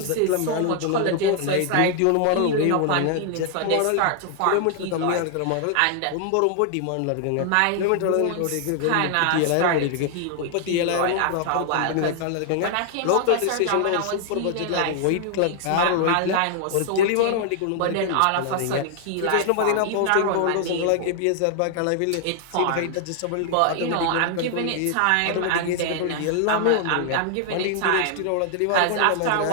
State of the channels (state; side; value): different; both; correlation 0.00